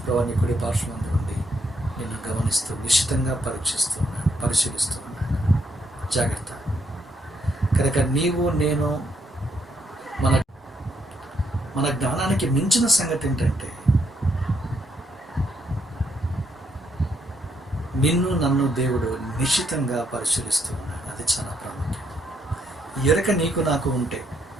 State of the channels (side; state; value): both; normal; correlation 0.74